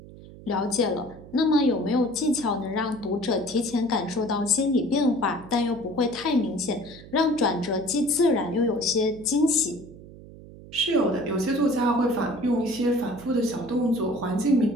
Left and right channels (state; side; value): noise; right; hum, 18 dB below the sound